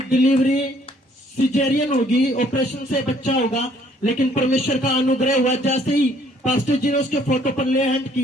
डिलीवरी सिजेरियन होगी, ऑपरेशन से बच्चा होगा। लेकिन परमेश्वर का अनुग्रह हुआ, जैसे ही पास्टर जी ने उसके फोटो पर ले हैंड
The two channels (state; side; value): normal; both; correlation 0.62